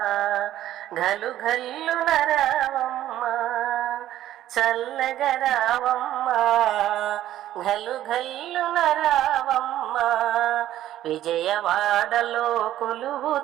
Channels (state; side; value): quieter; left; 12.9 dB